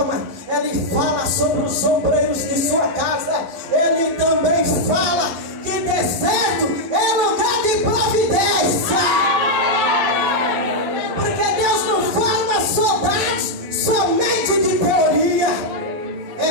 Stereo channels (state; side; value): late; left; 11 ms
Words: Ele fala sobre os obreiros de sua casa. Ele também fala que deserto é lugar de providência, porque Deus não forma soldados somente de teoria. É